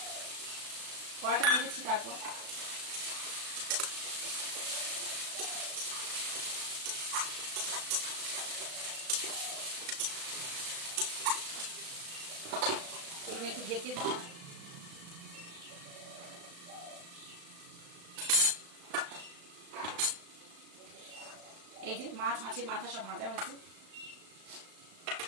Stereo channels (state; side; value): late; left; 35 ms